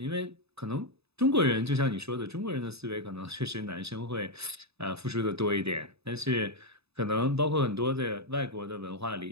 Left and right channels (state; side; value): late; left; 0.79 ms